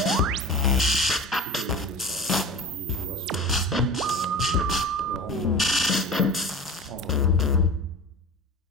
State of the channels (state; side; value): normal; both; correlation 0.35